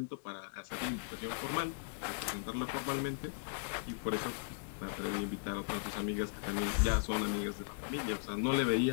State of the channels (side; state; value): right; silent; digital silence